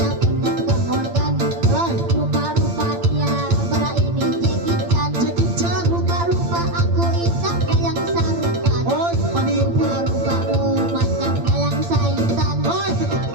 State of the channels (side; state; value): left; late; 8.8 ms